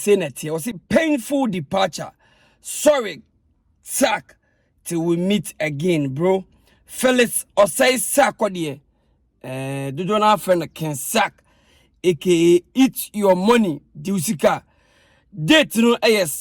na tie o say painful departure, sorry sack till we meet again bro. Felix Osai Sakode dodo na friend can sack aka eat your money diusika date no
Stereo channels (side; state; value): both; identical; correlation 1.00